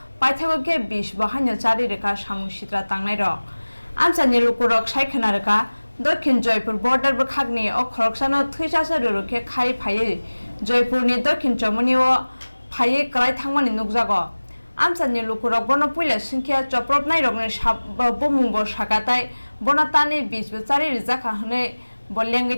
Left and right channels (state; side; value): inverted; both; correlation -1.00